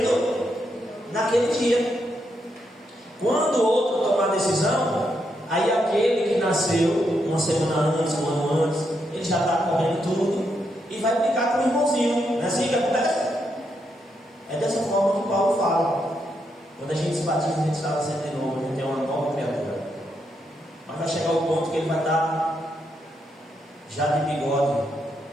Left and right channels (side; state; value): both; normal; correlation 0.80